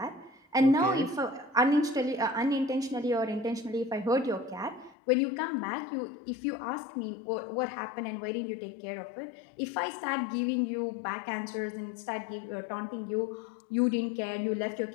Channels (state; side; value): drops out; right; at 5.0 s